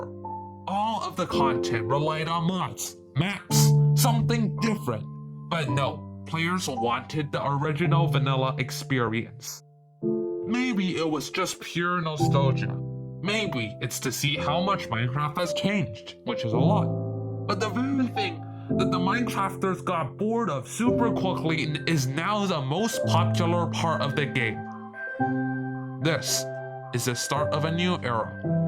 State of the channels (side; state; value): both; identical; correlation 1.00